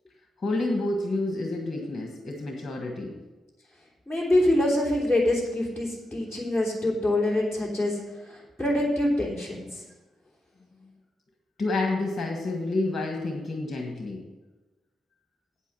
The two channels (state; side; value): normal; both; correlation 0.87